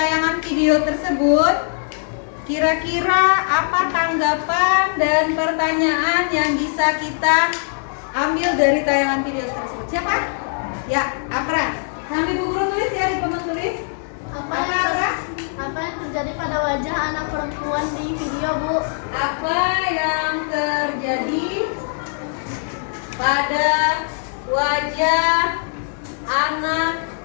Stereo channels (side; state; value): right; silent; digital silence